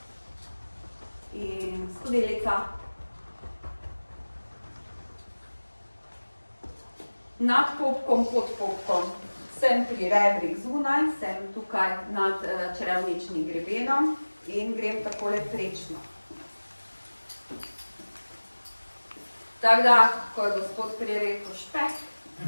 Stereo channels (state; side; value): inverted; both; correlation -1.00